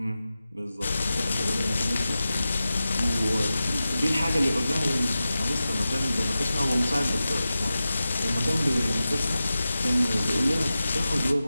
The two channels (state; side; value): inverted; both; correlation -0.93